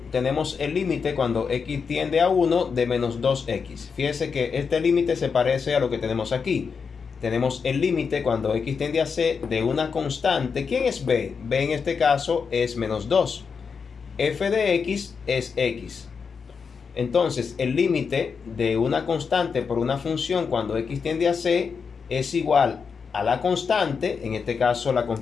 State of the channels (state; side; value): quieter; right; 5.7 dB